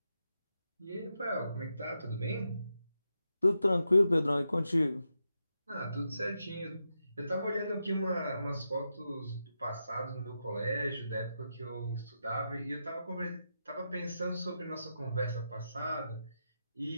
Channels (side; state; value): both; inverted; correlation -0.86